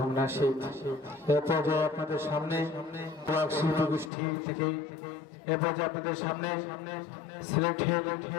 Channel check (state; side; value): drops out; right; at 4.1 s